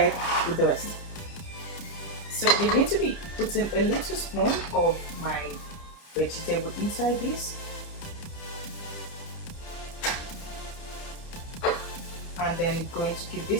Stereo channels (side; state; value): right; late; 30 ms